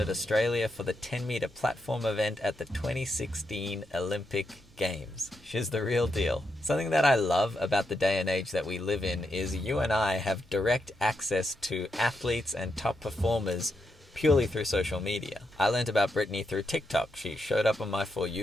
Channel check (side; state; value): both; normal; correlation 0.83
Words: Australia for the 10-meter platform event at the 2016 Olympic Games. She's the real deal. Something that I love about the day and age that we live in is you and I have direct access to athletes and top performers purely through social media. I learned about Brittany through TikTok. She showed up on my For